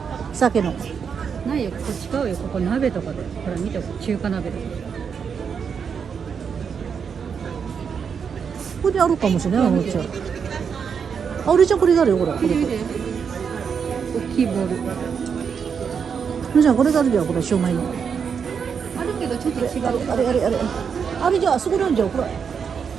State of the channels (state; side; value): quieter; left; 6.6 dB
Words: 鮭の。ないよ、ここ違うよ。ここ鍋とかで。ほら見て、中華鍋とか。ここにあるかもしれない、おもちゃ。あれじゃこれがあるよ、これ。これ。大きいボール。じゃあこれがあるじゃん、これ、シューマイの。あるけどちょっと違う。あれじゃあ、あそこなんじゃん、これ。